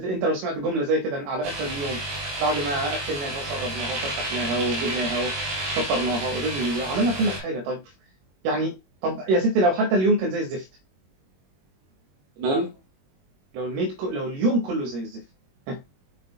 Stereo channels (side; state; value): left; late; 21 ms